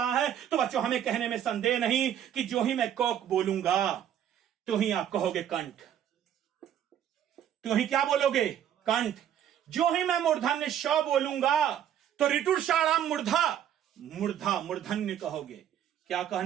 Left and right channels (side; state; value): left; quieter; 10.1 dB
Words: है। तो बच्चों हमें कहने में संदेह नहीं कि जो ही मैं कोक बोलूंगा तो ही आप कहोगे कंठ। तो ही क्या बोलोगे? कंठ। जो ही मैं मूर्धन्य श बोलूंगा तो ऋटुर षाणाम मूर्धा, मूर्धा मूर्धन्य कहोगे। क्या